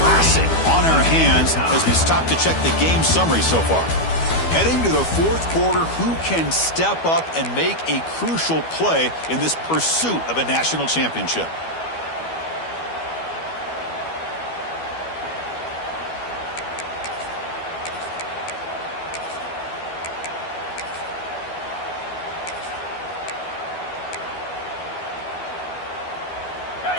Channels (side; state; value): right; late; 12 ms